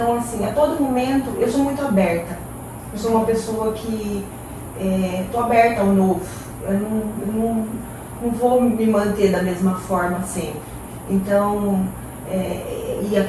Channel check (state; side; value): identical; both; correlation 1.00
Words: assim, a todo momento, eu sou muito aberta. Eu sou uma pessoa que estou aberta ao novo. Eu não vou me manter da mesma forma sempre. Então, e